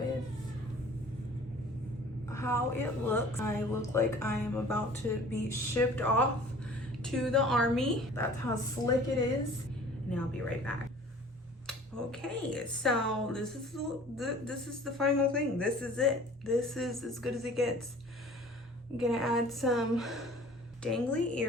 how it looks. I look like I am about to be shipped off to the army. That's how slick it is. And I'll be right back. Okay, so this is the final thing. This is it. This is as good as it gets. I'm gonna add some dangly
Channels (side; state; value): both; normal; correlation 0.48